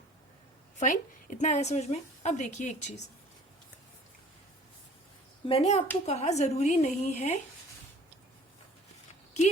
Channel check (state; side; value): normal; both; correlation 0.50